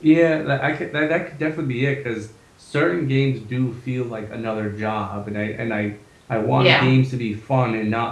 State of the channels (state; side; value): identical; both; correlation 1.00